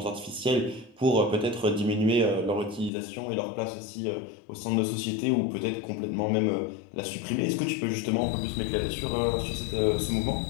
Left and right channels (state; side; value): drops out; right; at 2.9 s